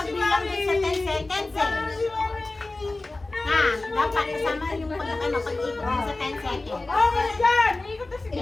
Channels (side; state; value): right; quieter; 3.1 dB